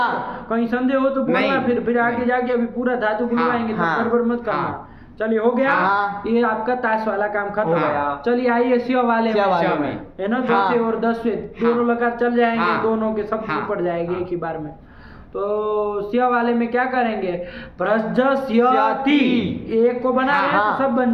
कहीं संदेह हो तो बोलना, नहीं। फिर आगे जाके अभी पूरा धातु बुलवाएंगे तो हाँ। गड़बड़ मत करना। हाँ। चलिए हो गया। हाँ। ये आपका ताश वाला काम खत्म हो हो गया। गया। चलिए आइए स्व वाले स्व वाले में, में। है ना? हाँ। 10 और 10 दोनों लगातार चल जाएंगे, हाँ। दोनों के सब हाँ। पड़ जाएंगे हाँ। एक ही बार में। तो स्व वाले में क्या करेंगे? भ्रज स्यति, एक को बना रहे हैं हाँ। तो सब बन बन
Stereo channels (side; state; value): both; identical; correlation 1.00